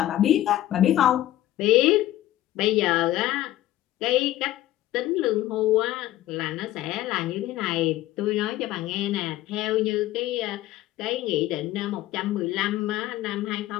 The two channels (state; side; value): quieter; right; 14.4 dB